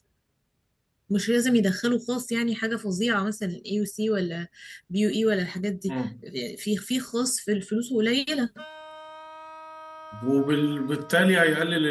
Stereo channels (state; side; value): identical; both; correlation 1.00